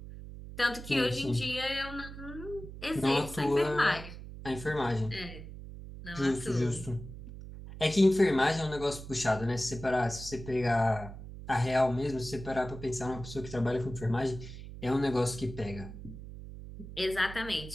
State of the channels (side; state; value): right; noise; hum, 12 dB below the sound